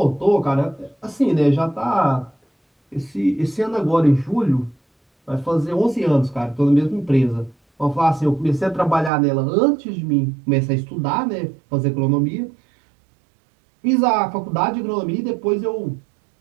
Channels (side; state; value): left; drops out; at 9.1 s